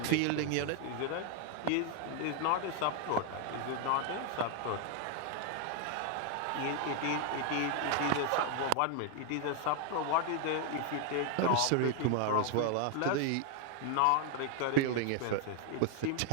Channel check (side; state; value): both; different; correlation 0.00